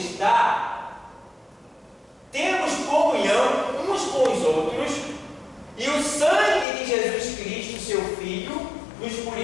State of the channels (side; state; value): right; drops out; at 6.7 s